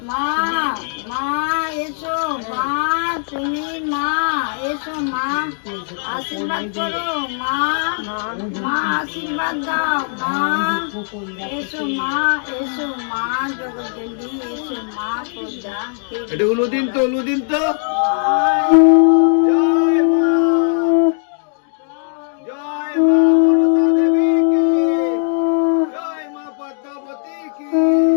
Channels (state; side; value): silent; right; digital silence